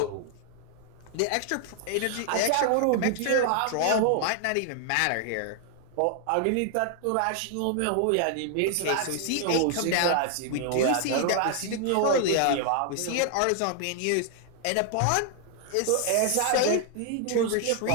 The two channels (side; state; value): both; different; correlation 0.00